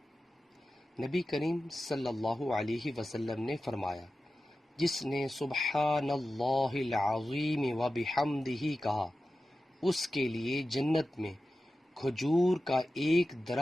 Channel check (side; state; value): both; normal; correlation 0.93